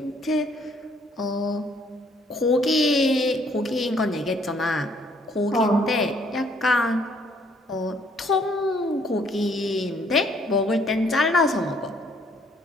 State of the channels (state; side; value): normal; both; correlation 0.64